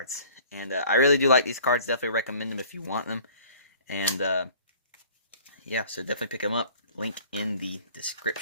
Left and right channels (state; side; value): inverted; both; correlation -0.50